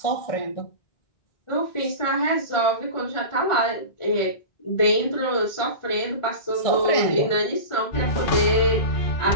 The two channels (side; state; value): right; late; 1.4 ms